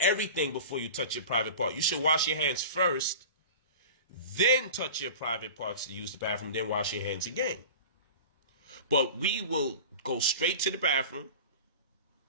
everything before you touch your private part. You should wash your hands first, then touch your private parts to use the bathroom, then wash your hands again. But we will go straight to the bathroom,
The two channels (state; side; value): inverted; both; correlation -0.35